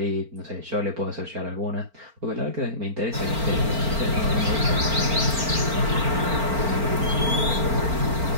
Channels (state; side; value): late; left; 4.4 ms